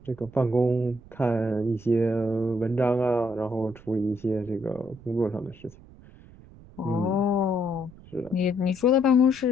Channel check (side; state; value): right; noise; rumble, 21 dB below the sound